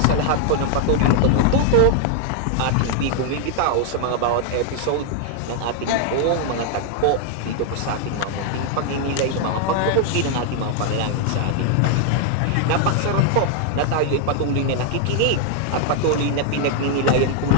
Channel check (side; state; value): both; different; correlation 0.00